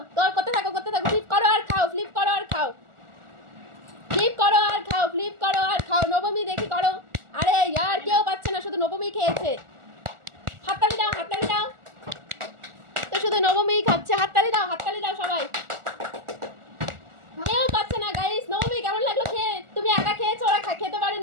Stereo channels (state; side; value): late; left; 1.4 ms